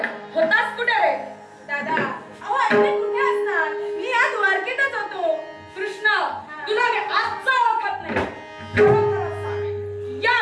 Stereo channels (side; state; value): both; identical; correlation 1.00